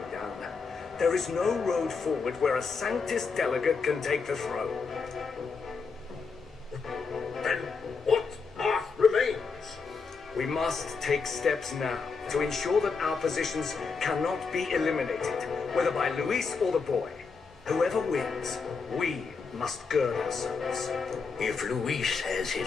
down. There is no road forward where a Sanctus delegate can take the throne. Then what path remains? We must take steps now to ensure that our positions cannot be eliminated, whether by Luis or the boy. Whoever wins, we must gird ourselves. If Luis has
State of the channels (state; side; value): quieter; right; 4.9 dB